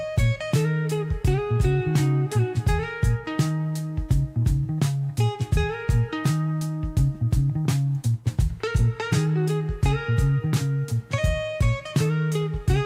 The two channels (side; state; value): both; identical; correlation 1.00